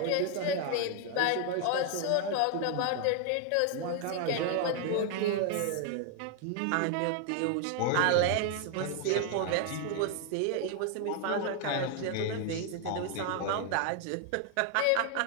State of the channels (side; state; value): both; different; correlation 0.00